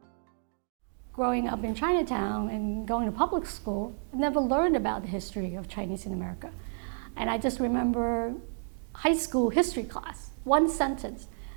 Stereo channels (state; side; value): silent; left; digital silence